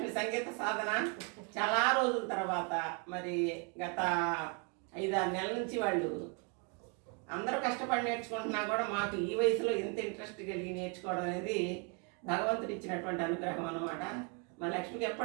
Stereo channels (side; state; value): left; quieter; 34.5 dB